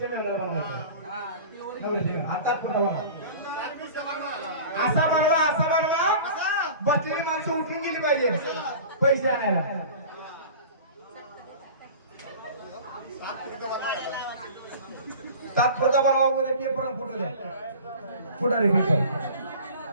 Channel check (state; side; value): inverted; both; correlation -0.39